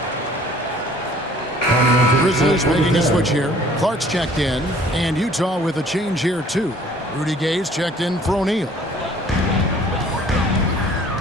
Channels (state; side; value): normal; both; correlation 0.54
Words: Grizzlies making a switch here. Clark's checked in. And Utah with a change here, too. Rudy Gay's checked in for O'Neal.